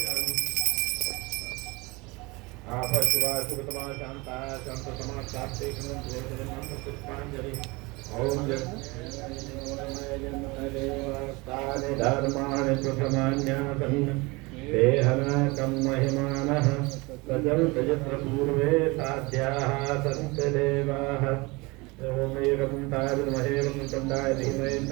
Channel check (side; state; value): left; quieter; 24.9 dB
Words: आपशिवा सुगतमा शांता शांततमा शांते पुष्पांजलि ओम जन्मदेवस्तानि धर्माणि प्रथमान्यासन् देहनाकं महिमानः तजन्त यत्र पूर्वे साध्याः सन्ति देवाः ओम एकं ताविद्महे वक्रतुण्डाय धीमहि